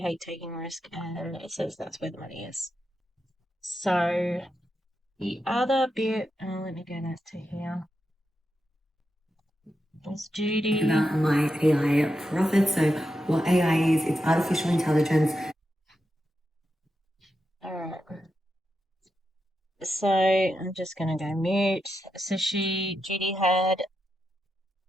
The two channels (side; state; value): both; normal; correlation 0.87